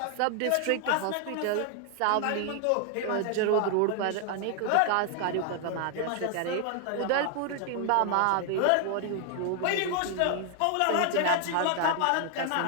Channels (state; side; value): different; both; correlation 0.00